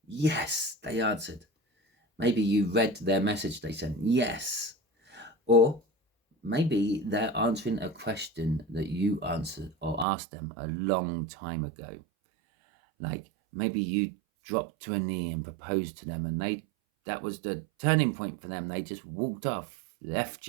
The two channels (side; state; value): left; drops out; at 10.1 s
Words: Yes, they answered. Maybe you read their message they sent. Yes. Or maybe they're answering a question that you answered or asked them a long time ago. Like maybe you dropped to a knee and proposed to them, and that was the turning point for them. They just walked off, left